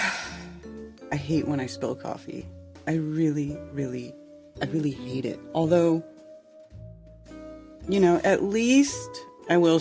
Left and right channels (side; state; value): both; identical; correlation 1.00